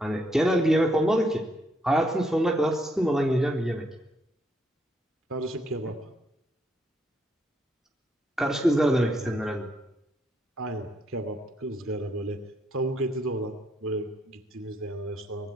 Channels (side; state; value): both; normal; correlation 0.74